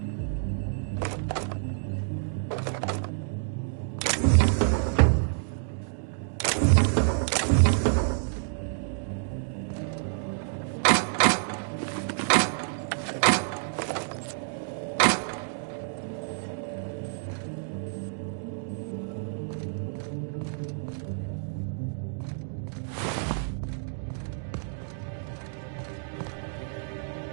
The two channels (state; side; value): silent; left; digital silence